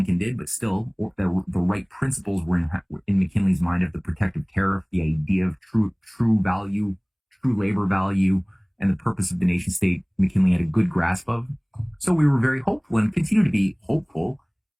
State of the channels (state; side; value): identical; both; correlation 1.00